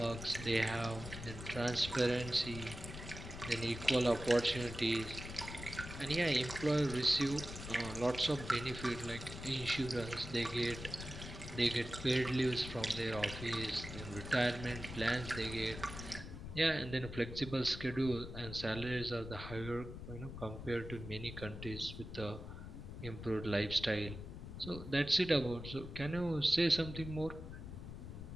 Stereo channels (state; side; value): noise; left; rumble, 10 dB below the sound